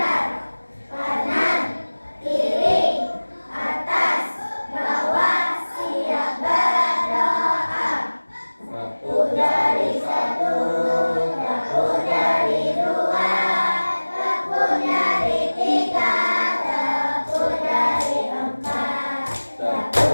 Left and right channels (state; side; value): inverted; both; correlation -1.00